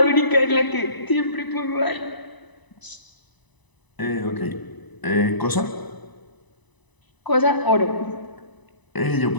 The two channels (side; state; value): right; late; 1.0 ms